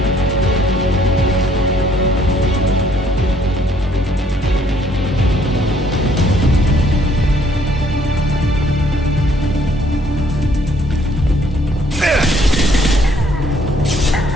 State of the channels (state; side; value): normal; both; correlation 0.64